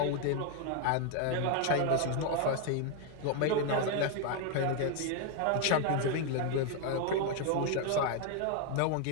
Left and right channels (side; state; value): both; different; correlation 0.01